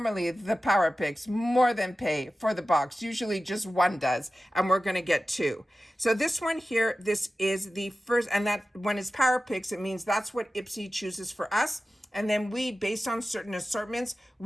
the Power Picks more than pay for the box. Usually just one does, and we're going to get 2. So this one here, this is the first, and that when it's Power Picks, it means that's what IPSY chooses for us. And then we, based on certain assortments,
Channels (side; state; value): both; normal; correlation 0.95